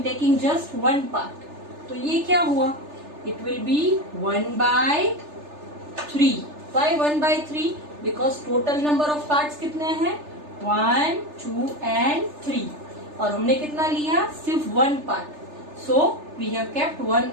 taking just 1 part. तो ये क्या हुआ? It will be 1/3. Why 1/3? Because total number of parts कितने हैं? 1, 2 and 3. और हमने कितना लिया? सिर्फ 1 part. So we have kept 1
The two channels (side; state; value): left; late; 3.3 ms